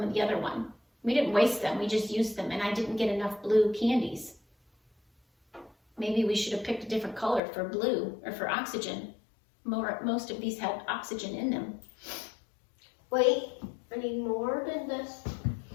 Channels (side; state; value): right; drops out; at 7.4 s